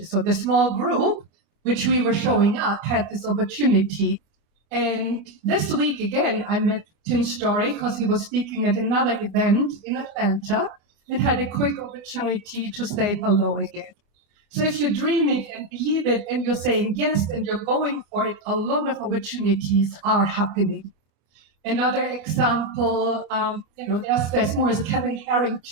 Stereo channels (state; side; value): late; left; 24 ms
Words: So the small group, which we were showing up, had this opportunity. And this week, again, I met Tim Story because he was speaking at another event in Atlanta and had a quick opportunity to say hello again. So if you dream it and believe it and you're saying yes and you're going for it, a lot of opportunities are happening. Another example, there's more is Kevin